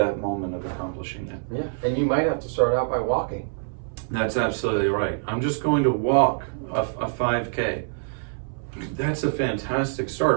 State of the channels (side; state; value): left; silent; 61 dB below the other